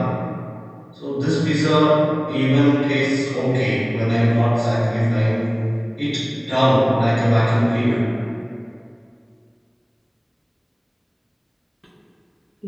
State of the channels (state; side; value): identical; both; correlation 1.00